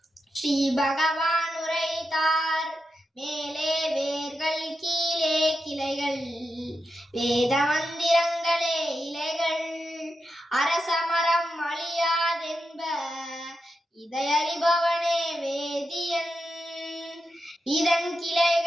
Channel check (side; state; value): both; normal; correlation 0.88